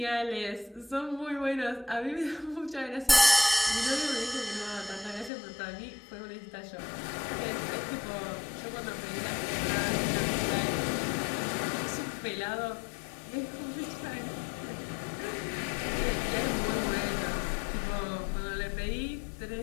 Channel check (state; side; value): drops out; right; at 5.3 s